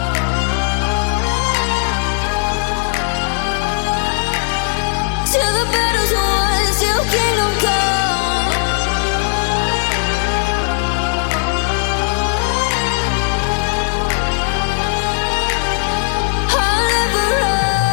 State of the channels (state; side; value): silent; right; 61 dB below the other